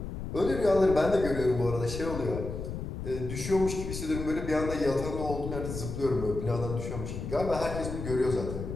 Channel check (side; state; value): left; noise; rumble, 6 dB below the sound